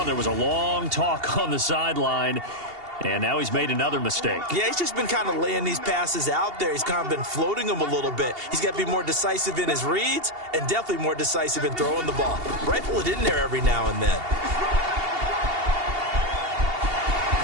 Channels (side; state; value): left; late; 2.8 ms